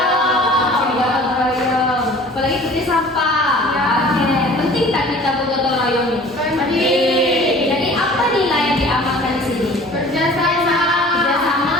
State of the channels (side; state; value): both; normal; correlation 0.47